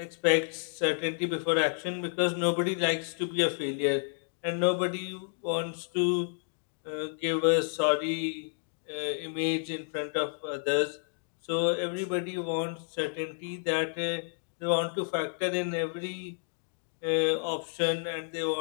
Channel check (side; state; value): right; silent; digital silence